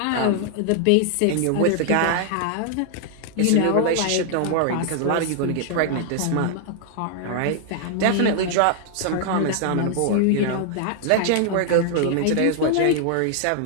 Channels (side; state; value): both; different; correlation 0.00